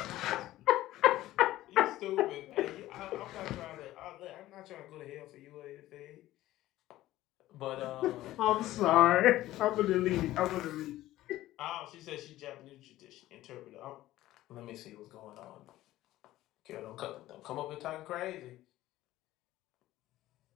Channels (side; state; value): right; quieter; 15.4 dB